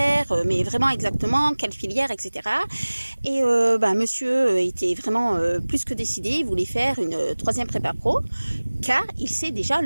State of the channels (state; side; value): inverted; both; correlation -1.00